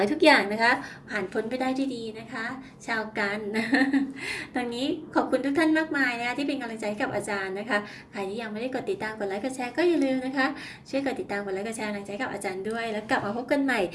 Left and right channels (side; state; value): both; identical; correlation 1.00